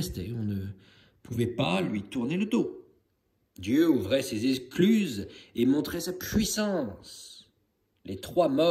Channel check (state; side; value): identical; both; correlation 1.00